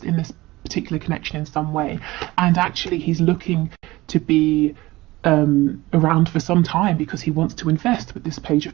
in this particular connection in some way, and actually he's looking to be around for some time because he wants to invest with this Page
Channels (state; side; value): quieter; left; 19.4 dB